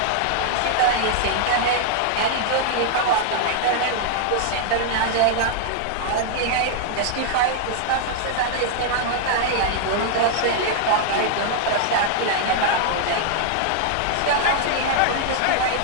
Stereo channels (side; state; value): both; different; correlation 0.00